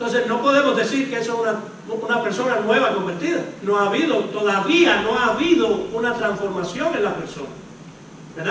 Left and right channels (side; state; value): both; identical; correlation 1.00